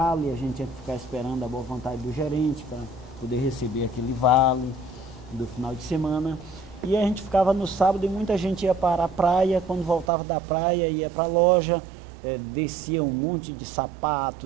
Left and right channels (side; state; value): left; drops out; at 10.1 s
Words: a gente tinha que ficar esperando a boa vontade do gerente para poder receber aquele vale do final de semana. E a gente ficava no sábado e muita gente ia para a praia, quando voltava da praia ia para a loja, descia um monte de